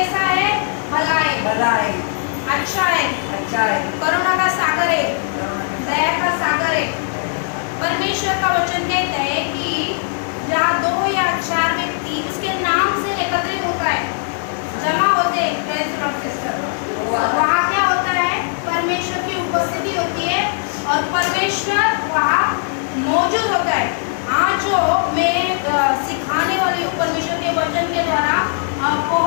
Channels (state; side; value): silent; right; digital silence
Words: है? भला है, भला है, अच्छा है, अच्छा है, करुणा का सागर है, दया का सागर है। परमेश्वर का वचन कहता है कि जहाँ 2 या 4 व्यक्ति उसके नाम से एकत्रित होता है, जमा होते हैं, प्रेज़ लॉर्ड सिस्टर, वहाँ क्या होता है? परमेश्वर की उपस्थिति होती है और परमेश्वर वहाँ मौजूद होता है। आज जो मैं सिखाने वाली हूँ परमेश्वर के वचन के द्वारा,